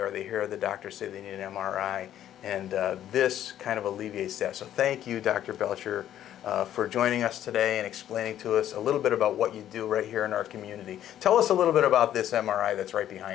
or they hear the doctor say they need an MRI. And this kind of alleviates that. So thank you, Dr. Belcher, for joining us today and explaining to us a little bit about what you do right here in our community. Tell us a little bit about this MRI that's right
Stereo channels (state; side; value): quieter; right; 11.4 dB